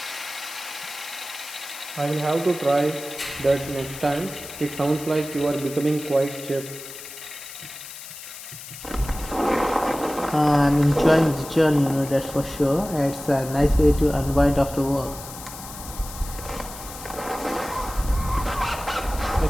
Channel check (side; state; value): left; noise; hiss, 13 dB below the sound